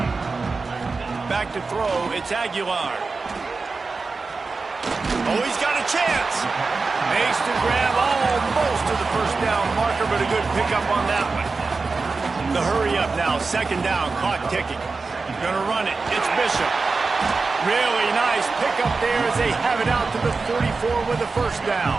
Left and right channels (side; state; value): left; quieter; 4.2 dB